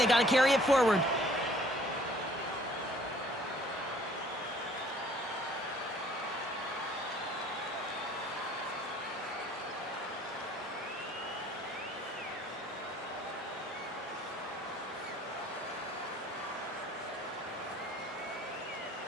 got to carry it forward.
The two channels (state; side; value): normal; both; correlation 0.56